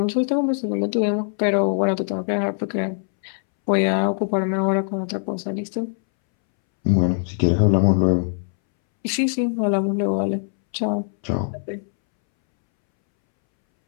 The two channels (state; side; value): silent; right; 63 dB below the other